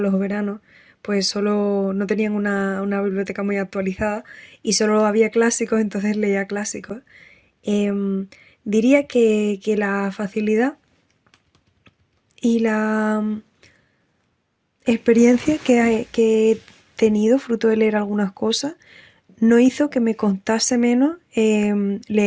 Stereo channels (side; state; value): both; identical; correlation 1.00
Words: veranos, pues solo no tenían una biblioteca muy actualizada y solo había clásicos, entonces leía clásicos. Em, Diría que la facilidad y la experiencia que he tenido fruto de leer algunas cosas no hizo que me costase menos